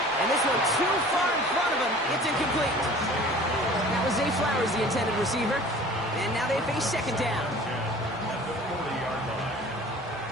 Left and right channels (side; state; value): both; normal; correlation 0.45